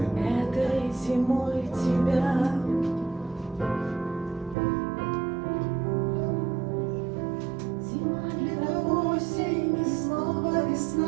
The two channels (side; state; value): left; drops out; at 4.5 s